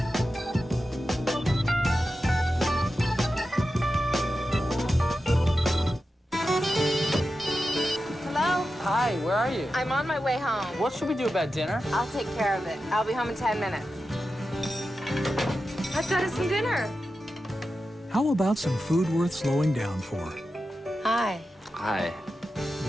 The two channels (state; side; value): normal; both; correlation 0.91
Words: Hi, where are you? I'm on my way home. What should we do about dinner? I'll take care of it. I'll be home in 10 minutes. I've got us some dinner. How about some food worth slowing down for? Hi. Hi.